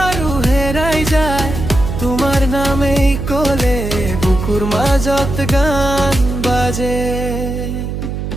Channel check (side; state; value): right; noise; hum, 5 dB below the sound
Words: হেৰাই যায়, তোমাৰ নামেই ক'লে বুকুৰ মাজত গান বাজে।